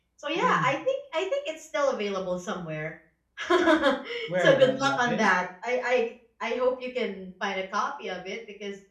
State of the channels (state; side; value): identical; both; correlation 1.00